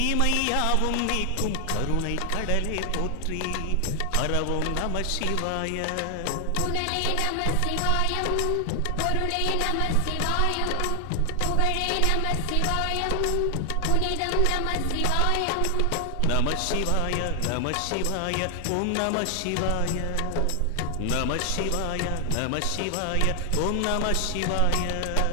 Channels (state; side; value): different; both; correlation 0.00